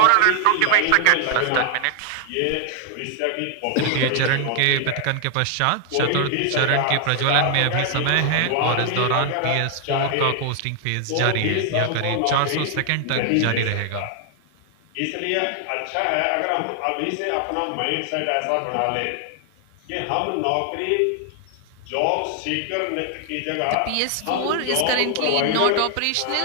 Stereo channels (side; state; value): both; different; correlation 0.00